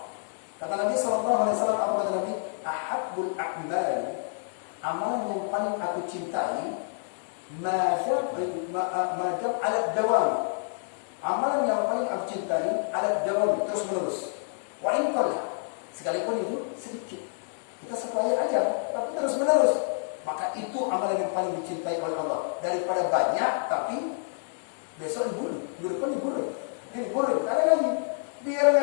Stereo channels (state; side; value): silent; right; digital silence